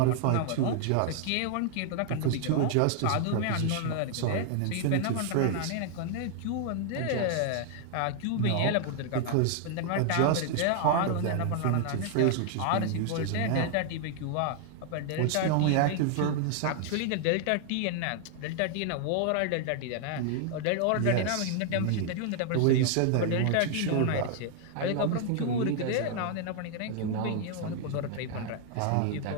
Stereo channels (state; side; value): different; both; correlation 0.00